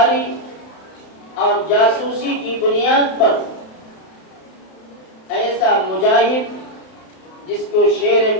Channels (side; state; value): right; late; 31 ms